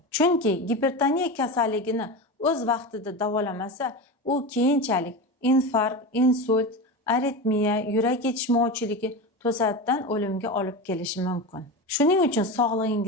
Chunki gipertoniya kasalligini o'z vaqtida davolamasa, u keyinchalik infarkt, insult, aritmiya, yurak yetishmovchiligi to'satdan o'limga olib kelishi mumkin. Shuning uchun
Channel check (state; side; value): normal; both; correlation 0.23